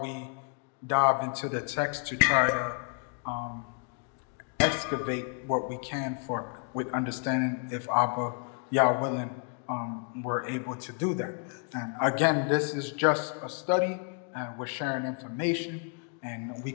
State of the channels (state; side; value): quieter; right; 39.5 dB